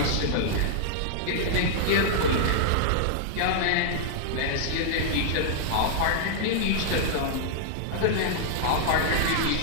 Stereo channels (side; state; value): both; different; correlation -0.01